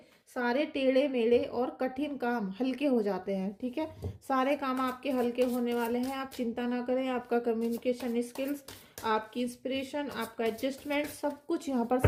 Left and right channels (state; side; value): identical; both; correlation 1.00